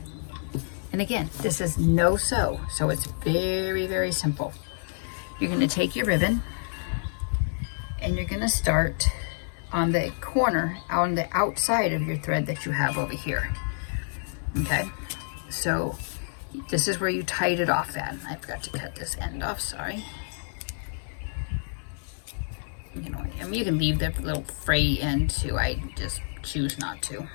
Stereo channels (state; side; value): silent; right; digital silence